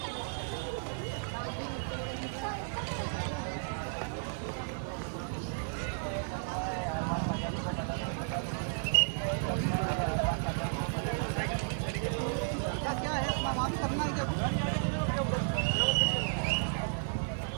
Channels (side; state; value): left; silent; digital silence